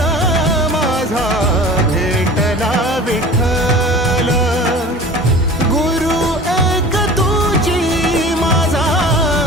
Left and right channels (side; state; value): both; normal; correlation 0.40